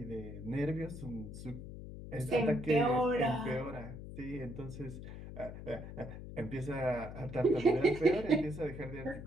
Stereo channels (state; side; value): noise; left; hum, 11 dB below the sound